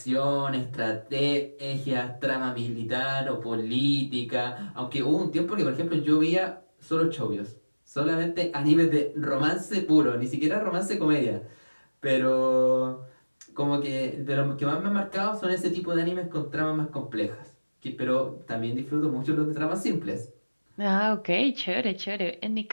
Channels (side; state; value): both; inverted; correlation -1.00